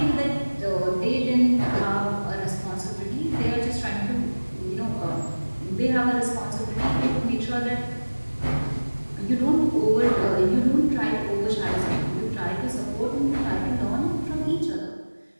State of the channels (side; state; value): both; inverted; correlation -1.00